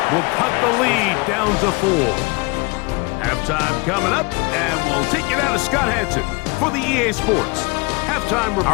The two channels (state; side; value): quieter; right; 27.3 dB